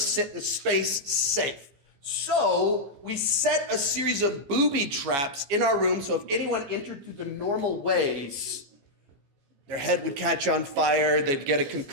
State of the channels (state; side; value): late; left; 14 ms